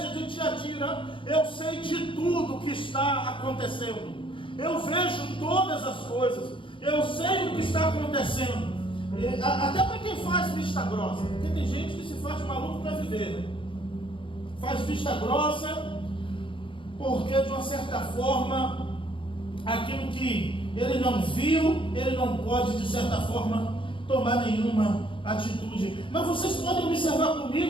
de Tiatira, eu sei de tudo o que está acontecendo. Eu vejo todas as coisas. Eu sei o que está acontecendo. Até para quem faz vista grossa, porque tem gente que se faz maluco para viver, né? Faz vista grossa porque de uma certa forma aquilo que ele não viu, ele não pode de certa forma tomar nenhuma atitude. Mas vocês podem observar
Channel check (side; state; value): right; late; 0.25 ms